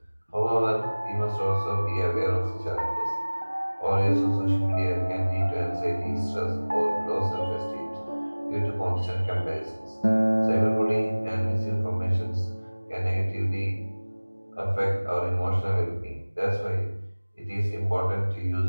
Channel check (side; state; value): both; inverted; correlation -1.00